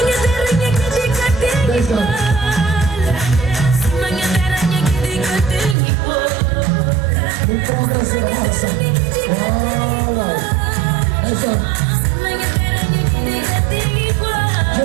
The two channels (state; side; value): drops out; left; at 5.8 s